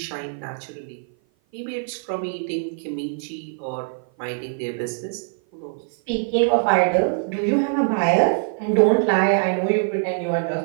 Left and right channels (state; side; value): silent; left; 56 dB below the other